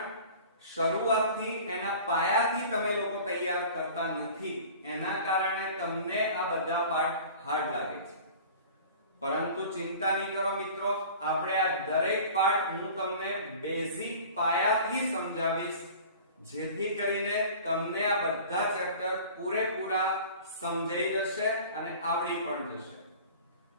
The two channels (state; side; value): inverted; both; correlation -0.42